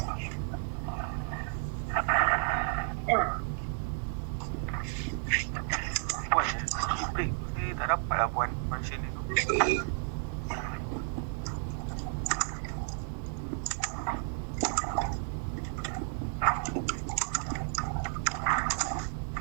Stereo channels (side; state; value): left; silent; 56 dB below the other